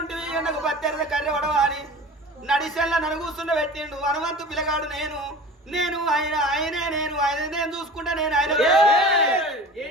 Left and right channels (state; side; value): normal; both; correlation 0.38